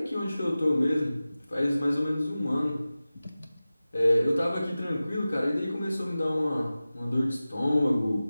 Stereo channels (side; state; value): both; inverted; correlation -0.96